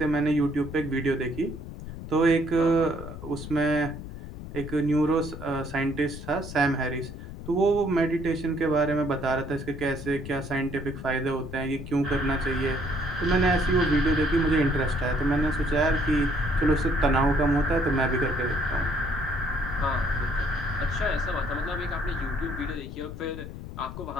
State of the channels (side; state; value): left; noise; rumble, 10 dB below the sound